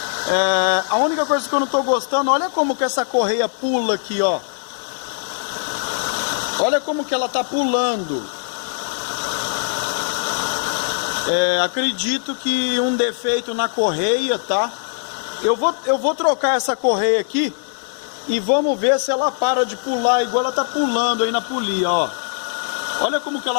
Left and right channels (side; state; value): right; silent; digital silence